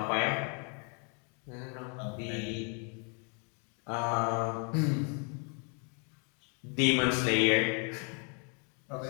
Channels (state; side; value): quieter; right; 37.9 dB